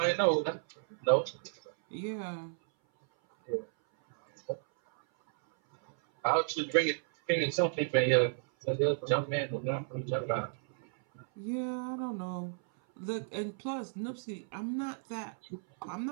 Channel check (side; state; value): left; silent; 56 dB below the other